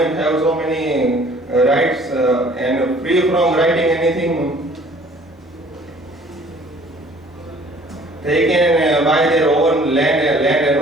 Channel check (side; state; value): both; normal; correlation 0.54